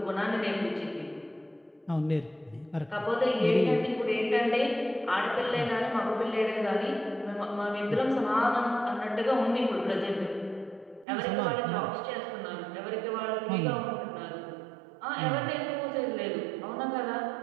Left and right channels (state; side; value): drops out; left; at 11.1 s